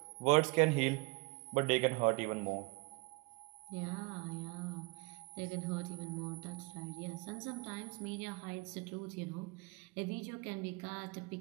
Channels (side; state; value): left; quieter; 27.8 dB